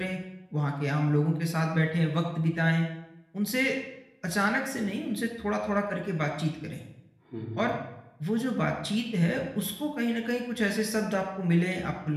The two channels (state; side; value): identical; both; correlation 1.00